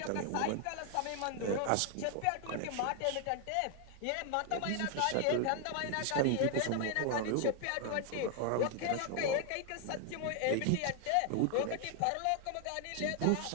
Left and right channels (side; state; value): both; different; correlation 0.00